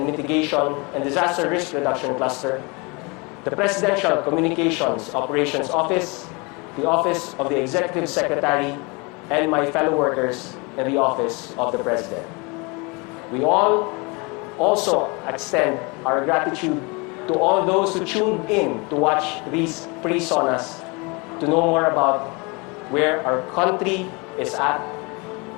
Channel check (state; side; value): quieter; right; 28.9 dB